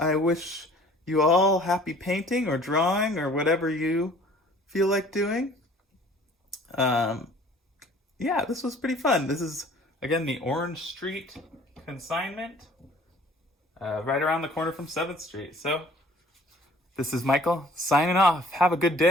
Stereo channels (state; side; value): normal; both; correlation 0.52